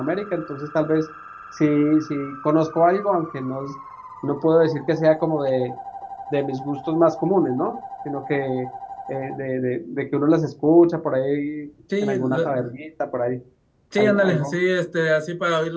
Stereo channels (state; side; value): identical; both; correlation 1.00